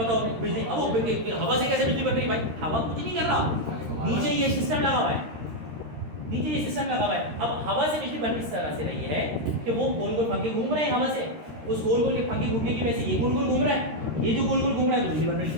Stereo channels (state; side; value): late; left; 13 ms